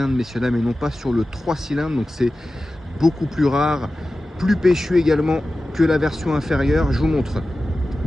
messieurs dames, et non pas sur le 3 cylindres. Donc c'est beaucoup plus rare, plus péchu également que la version inférieure. Je vous montre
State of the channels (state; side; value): normal; both; correlation 0.95